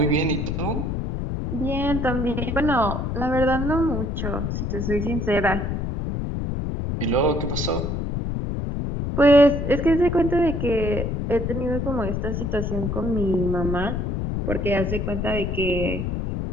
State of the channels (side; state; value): left; noise; rumble, 2 dB below the sound